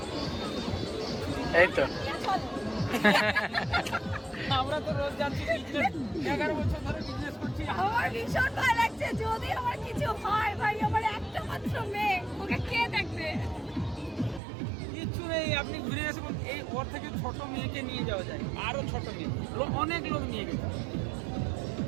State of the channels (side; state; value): left; drops out; at 14.4 s